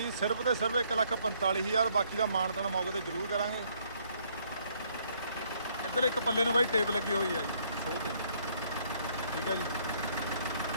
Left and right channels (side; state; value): both; inverted; correlation -0.66